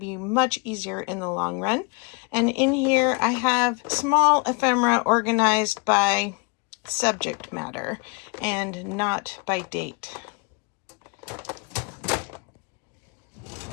much easier in the long run. And in here, I have small ephemera organized by subject matter and not by date.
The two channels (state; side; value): quieter; right; 32.3 dB